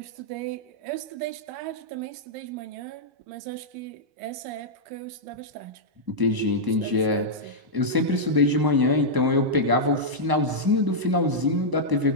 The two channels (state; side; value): late; left; 1.0 ms